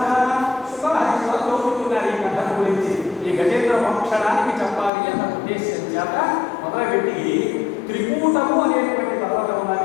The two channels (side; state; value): right; drops out; at 4.9 s